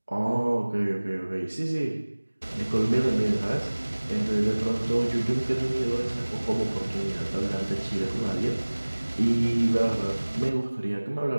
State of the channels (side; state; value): both; inverted; correlation -1.00